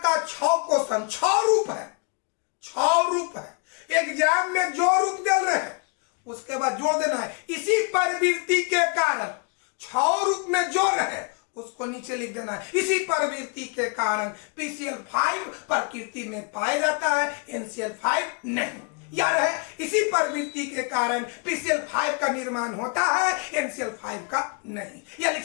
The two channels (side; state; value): right; quieter; 36.1 dB